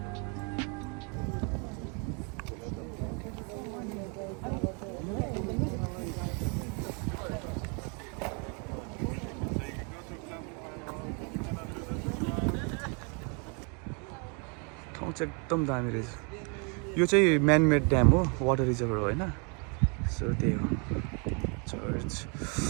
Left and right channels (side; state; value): left; quieter; 35.5 dB